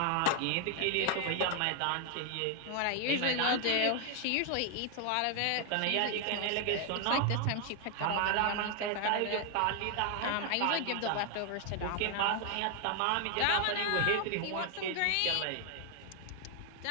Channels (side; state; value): both; different; correlation 0.00